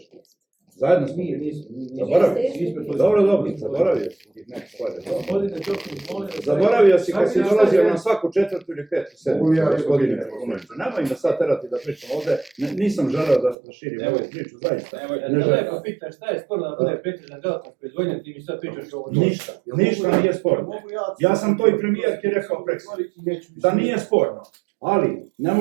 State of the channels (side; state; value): left; drops out; at 13.6 s